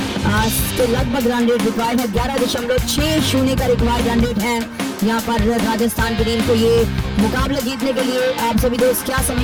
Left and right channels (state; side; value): identical; both; correlation 1.00